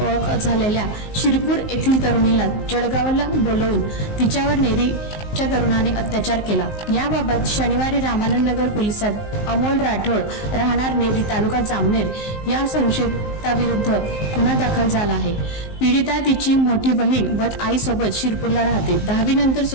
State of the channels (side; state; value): right; late; 19 ms